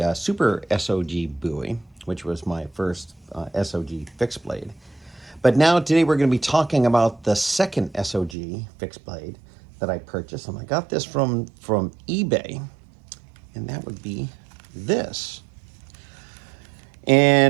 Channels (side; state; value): left; drops out; at 8.3 s